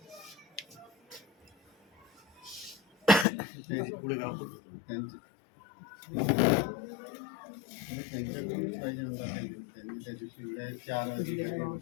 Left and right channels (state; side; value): drops out; right; at 3.2 s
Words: त्यांच्याकडूनच पाहिजे आमचा त्यांनी त्या दिवशी 4 अधिकारी